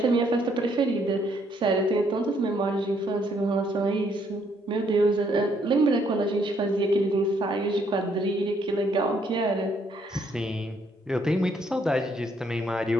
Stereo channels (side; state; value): both; normal; correlation 0.70